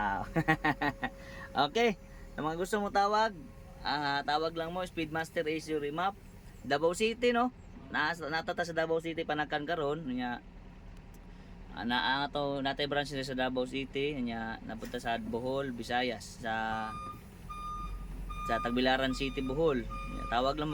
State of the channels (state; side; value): identical; both; correlation 1.00